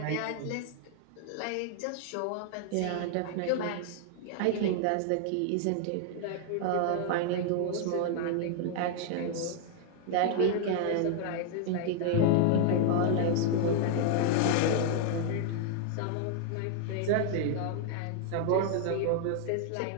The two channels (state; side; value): different; both; correlation 0.00